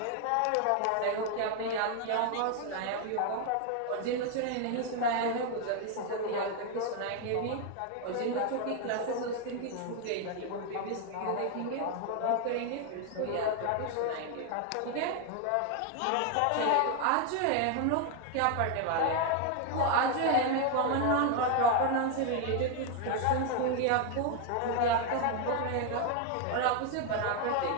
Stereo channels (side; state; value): both; different; correlation 0.01